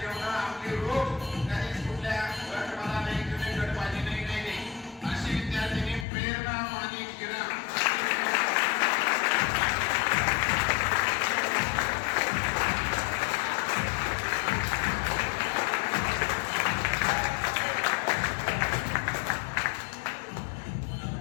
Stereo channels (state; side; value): drops out; right; at 6.1 s